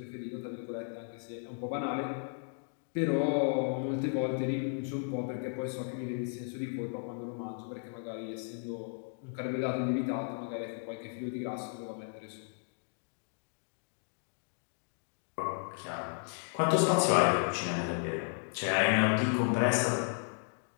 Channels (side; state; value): right; silent; 55 dB below the other